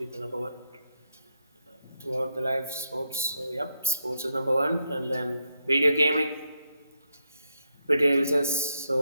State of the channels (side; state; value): both; inverted; correlation -0.79